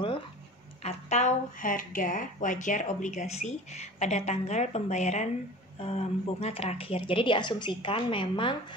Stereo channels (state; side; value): normal; both; correlation 0.39